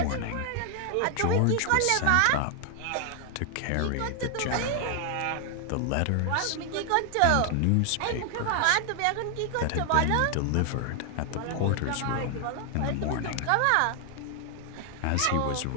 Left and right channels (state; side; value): different; both; correlation 0.00